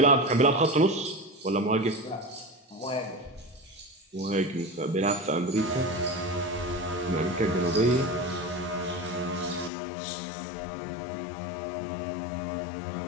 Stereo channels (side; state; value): right; drops out; at 9.7 s